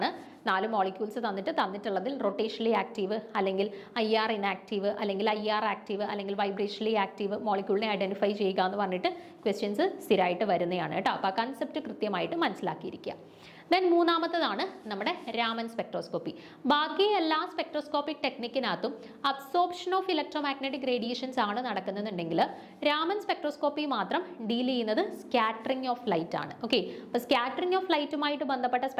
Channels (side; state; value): both; identical; correlation 1.00